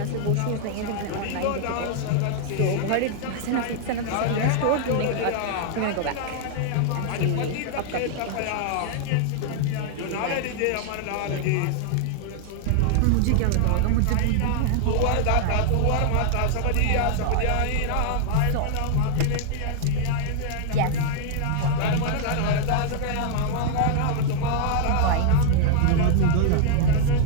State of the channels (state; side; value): different; both; correlation 0.00